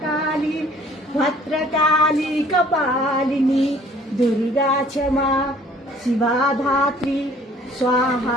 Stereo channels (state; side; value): normal; both; correlation 0.56